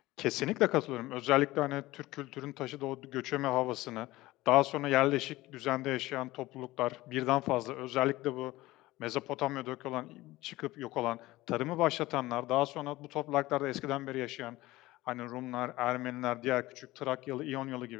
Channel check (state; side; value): quieter; right; 18.3 dB